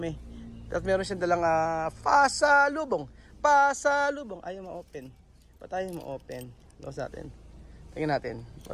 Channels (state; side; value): identical; both; correlation 1.00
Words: At meron siyang dalang pasalubong. Pasalubong. Ayaw ma-open. Ba't tayo ma-open? Lawas natin. Tingnan natin.